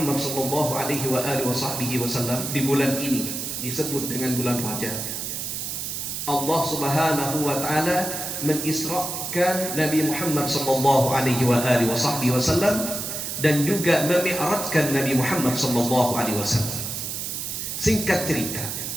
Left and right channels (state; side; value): noise; right; hiss, 4 dB below the sound